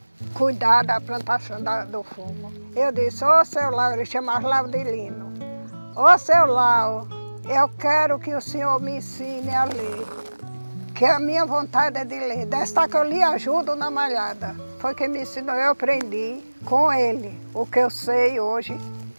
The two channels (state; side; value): inverted; both; correlation -1.00